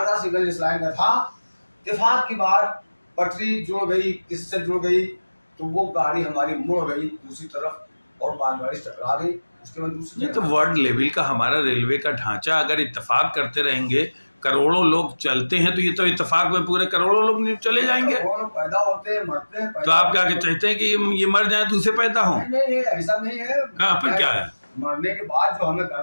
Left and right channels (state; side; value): inverted; both; correlation -1.00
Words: था सिग्नल जिस लाइन का था, इत्तेफाक की बात पटरी जुड़ गई, किससे जुड़ गई तो वो गाड़ी हमारी मुड़ गई दूसरी तरफ और मालगाड़ी टकरा गई। उसके बाद दूसरी, ये तो वर्ल्ड लेवल का हमारा रेलवे का ढांचा, अगर इत्तेफाक करते रहेंगे, करोड़ों लोग चलते हैं तो ये तो इत्तेफाक में पूरे करोड़ों लोग चले जाएंगे। पैदा होते हैं, मरते हैं। तो आप क्या चाहते हैं कि ये मर जाए दूसरे पैदा हो? नहीं, ऐसा नहीं है। फिर क्या है? मरने के बाद जो हमें